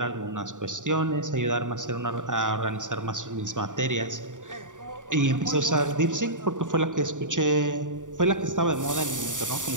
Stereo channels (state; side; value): late; left; 0.87 ms